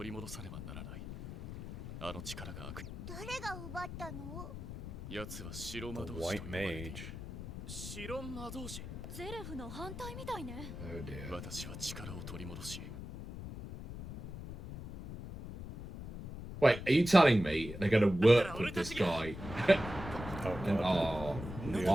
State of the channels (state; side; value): noise; left; rumble, 9 dB below the sound